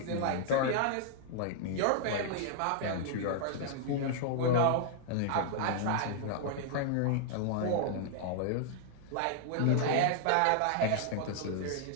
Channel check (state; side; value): different; both; correlation -0.01